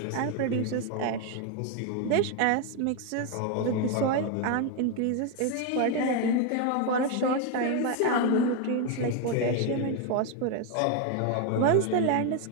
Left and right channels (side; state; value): both; different; correlation 0.01